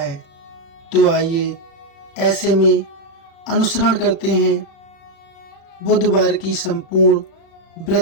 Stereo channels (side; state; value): right; late; 36 ms